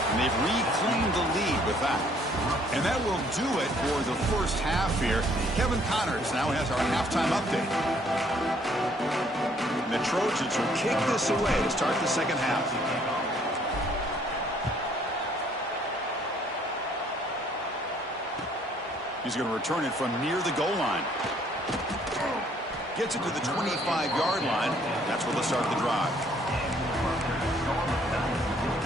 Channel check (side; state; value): both; normal; correlation 0.63